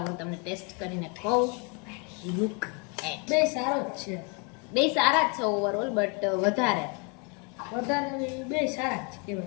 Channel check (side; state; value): right; quieter; 34.1 dB